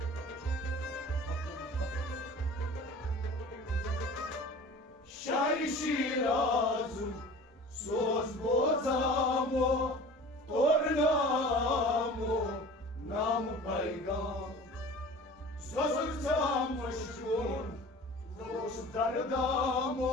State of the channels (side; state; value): both; normal; correlation 0.41